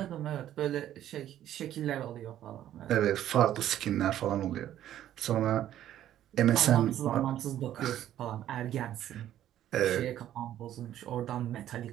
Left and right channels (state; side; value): quieter; left; 11.9 dB